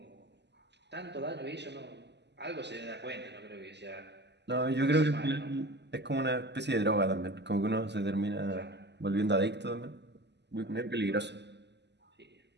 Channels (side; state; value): left; late; 0.50 ms